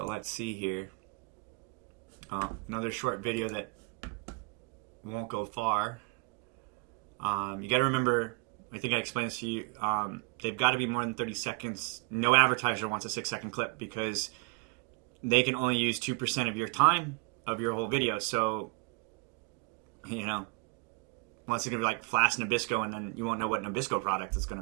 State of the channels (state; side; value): quieter; left; 30.4 dB